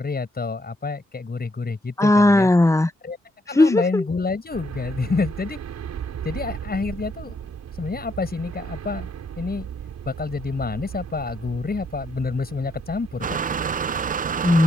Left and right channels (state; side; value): normal; both; correlation 0.75